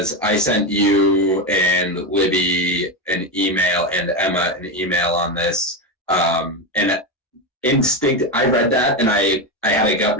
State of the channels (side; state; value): both; normal; correlation 0.13